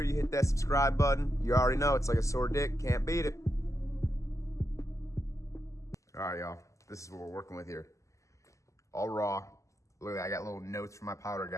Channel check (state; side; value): late; right; 0.15 ms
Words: you hit that subscribe button. You already know it's like a sore dick, can't beat it. All right, y'all. This is what we're working with here. All raw. Look at that, I got little notes from my powder